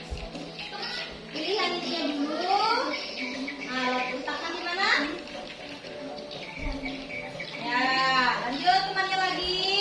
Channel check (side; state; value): both; identical; correlation 1.00